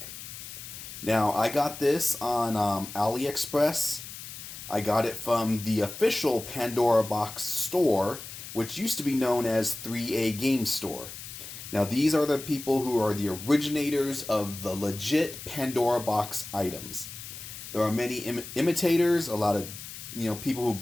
Now, I got this on AliExpress. I got it from the official Pandora box store, which used to be known as 3A Game Store. Now, these are the people who are the originators of the legit Pandora box items. There are many imitators, a lot of people who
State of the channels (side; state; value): left; noise; hiss, 12 dB below the sound